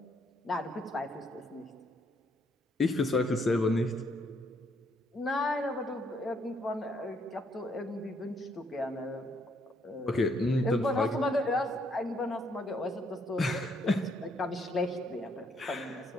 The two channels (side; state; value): both; normal; correlation 0.71